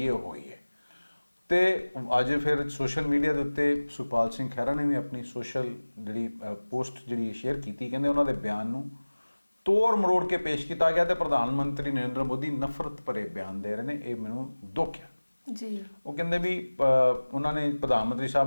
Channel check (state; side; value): inverted; both; correlation -1.00